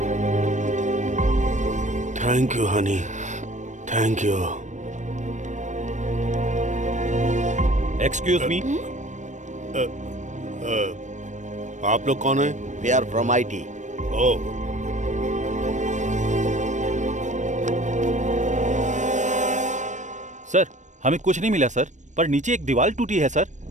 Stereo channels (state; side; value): late; left; 0.35 ms